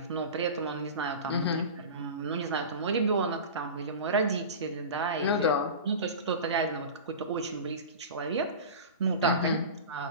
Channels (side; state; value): both; inverted; correlation -0.30